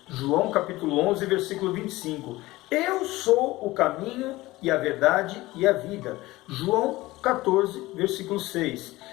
João capítulo 11, versículo 25. Eu sou o caminho e a verdade e a vida. João 14, versículo 6.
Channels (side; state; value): right; quieter; 19.0 dB